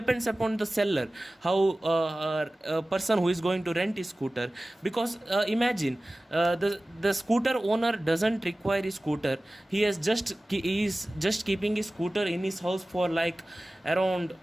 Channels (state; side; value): normal; both; correlation 0.97